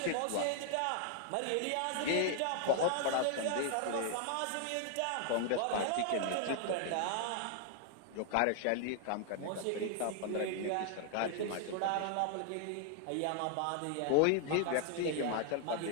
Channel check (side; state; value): both; different; correlation 0.00